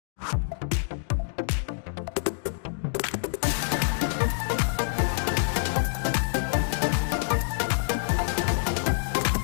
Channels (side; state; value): right; silent; digital silence